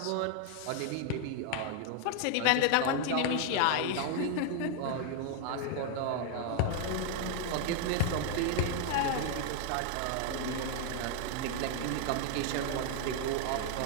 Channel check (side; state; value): both; different; correlation 0.00